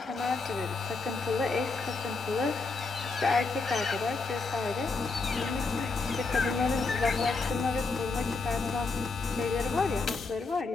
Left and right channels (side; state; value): right; quieter; 4.1 dB